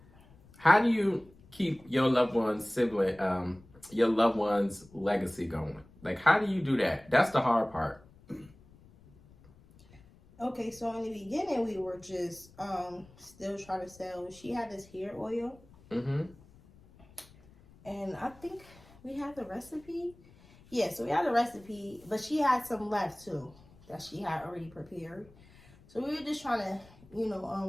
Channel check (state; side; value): noise; left; rumble, 25 dB below the sound